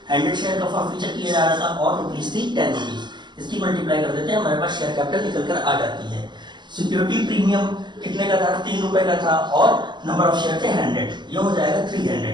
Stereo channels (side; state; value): left; late; 0.21 ms